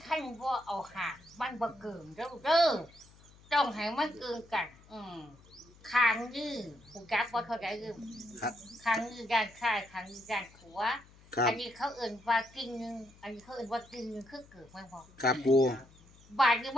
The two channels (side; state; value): left; noise; hum, 25 dB below the sound